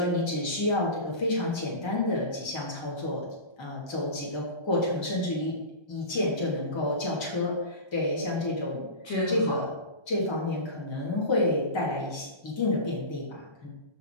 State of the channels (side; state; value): right; late; 1.3 ms